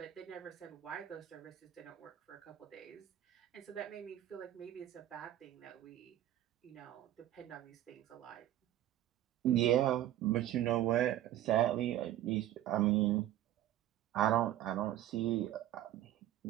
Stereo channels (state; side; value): quieter; left; 13.1 dB